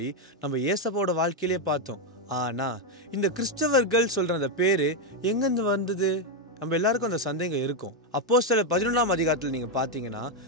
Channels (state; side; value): normal; both; correlation 0.03